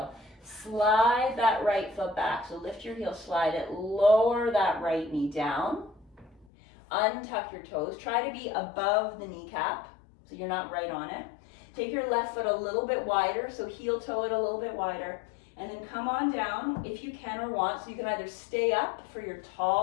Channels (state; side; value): drops out; right; at 6.5 s